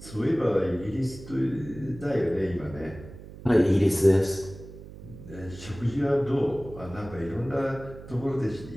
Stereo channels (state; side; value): noise; right; hum, 15 dB below the sound